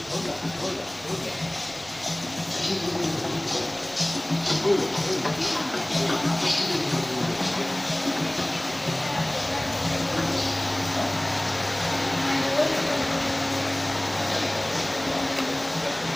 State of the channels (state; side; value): noise; right; rumble, 25 dB below the sound